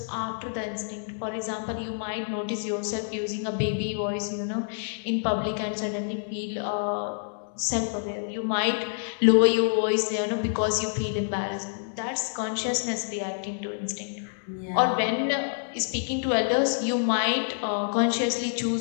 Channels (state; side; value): silent; right; digital silence